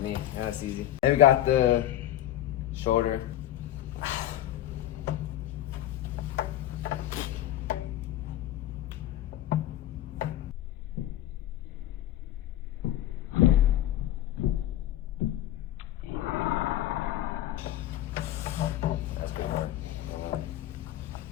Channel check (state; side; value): quieter; right; 13.0 dB